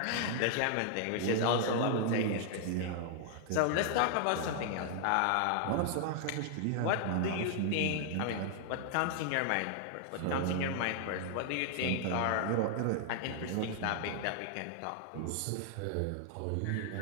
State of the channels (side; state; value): both; different; correlation 0.00